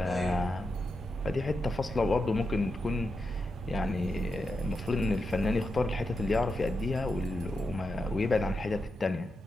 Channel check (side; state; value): both; normal; correlation 0.87